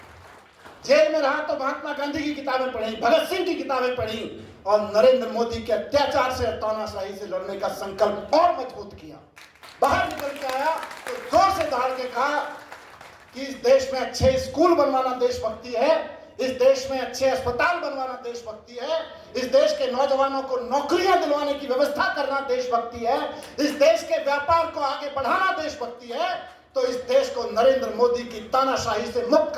जेल में रहा तो महात्मा गांधी की किताबें पढ़ी, भगत सिंह की किताबें पढ़ी और नरेंद्र मोदी के अत्याचार से, तानाशाही से लड़ने का संकल्प और मजबूत किया। बाहर निकल के आया तो जोर से दहाड़ के कहा कि इस देश में अच्छे स्कूल बनवाना देशभक्ति है, इस देश में अच्छे अस्पताल बनवाना देशभक्ति है, इस देश के नौजवानों को नौकरियां दिलवाने की व्यवस्था करना देशभक्ति है, इस देश के व्यापार को आगे बढ़ाना देशभक्ति है, तो इस देश को नरेंद्र मोदी की तानाशाही से मुक्त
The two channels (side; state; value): both; identical; correlation 1.00